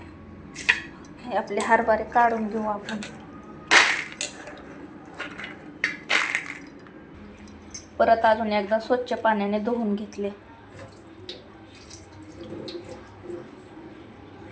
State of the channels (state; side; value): identical; both; correlation 1.00